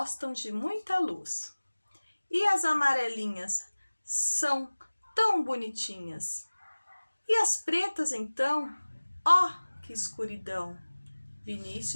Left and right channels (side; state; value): both; inverted; correlation -1.00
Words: de muita luz. E as amarelinhas são tão bonitinhas. E as pretas, então, ó, que escuridão!